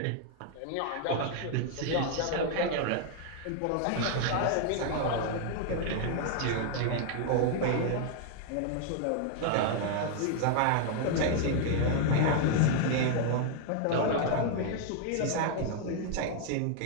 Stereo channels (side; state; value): both; different; correlation 0.00